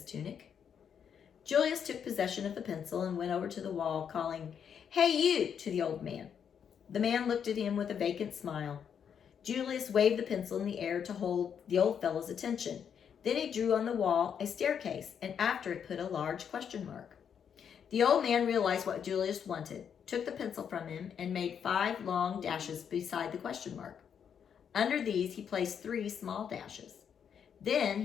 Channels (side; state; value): right; quieter; 7.8 dB